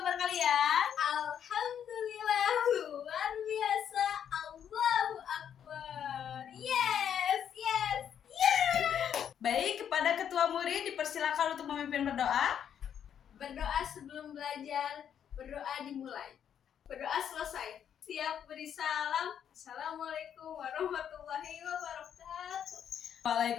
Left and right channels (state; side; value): quieter; right; 8.9 dB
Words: kalian? Alhamdulillah luar biasa. Allahu Akbar. Yes. Baik, kepada ketua murid dipersilakan untuk memimpin berdoa. Berdoa sebelum belajar, berdoa dimulai. Berdoa selesai. Siap beri salam. Assalamualaikum warahmatullahi wabarakatuh.